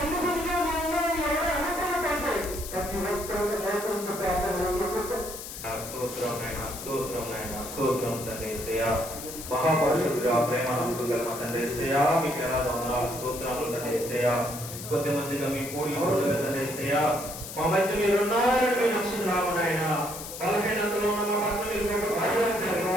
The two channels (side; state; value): left; noise; hiss, 10 dB below the sound